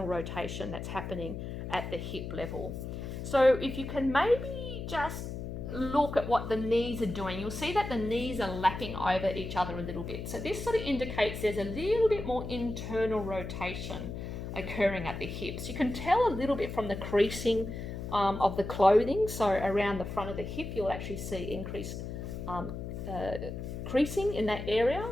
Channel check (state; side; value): noise; left; hum, 7 dB below the sound